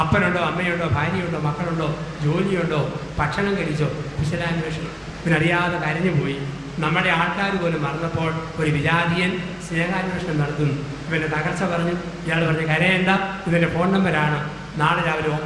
അപ്പനുണ്ടോ, അമ്മയുണ്ടോ, ഭാര്യയുണ്ടോ, മക്കളുണ്ടോ, ജോലിയുണ്ടോ, ഭക്ഷണം കഴിച്ചോ? കുശലാന്വേഷണം. ഇവനറിയാതെ കരഞ്ഞു പോയി. നമ്മുടെ ആൾക്കാർ പോലും മറന്നപ്പോൾ ഒരു വിജാതിയൻ സ്നേഹാന്വേഷണം നടത്തുന്നു. ഇവൻ്റെ തകർച്ച പറഞ്ഞു. ഇയാൾ പറഞ്ഞു, കരയേണ്ട, ഇതിൻ്റെ ഫോൺ നമ്പരാണ്, നാളെ രാവിലെ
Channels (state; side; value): identical; both; correlation 1.00